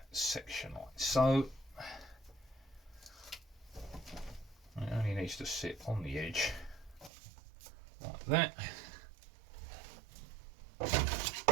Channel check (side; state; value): left; drops out; at 7.1 s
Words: section like so. It only needs to sit on the edge like that.